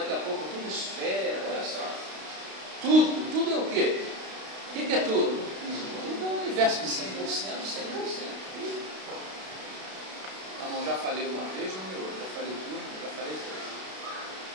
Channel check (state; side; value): late; left; 32 ms